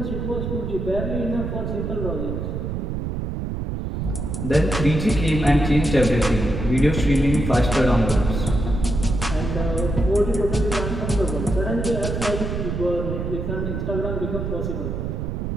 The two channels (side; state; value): right; noise; rumble, 3 dB below the sound